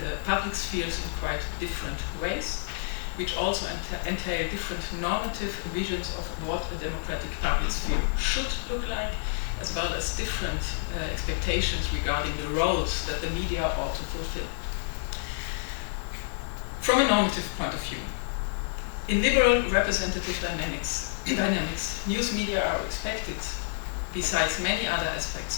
the public spheres in quite different ways, which also entail different normative visions of what a democratic public sphere should look like, as well as different expectations regarding the roles that the media ought to fulfill. From a normative point of view, in liberal representative dynamics, news media are expected, besides many other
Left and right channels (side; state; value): right; silent; digital silence